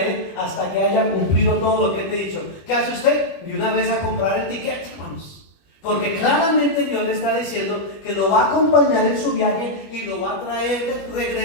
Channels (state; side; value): late; right; 21 ms